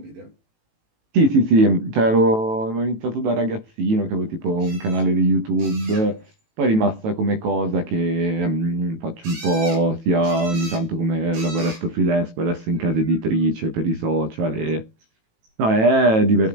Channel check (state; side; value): late; left; 18 ms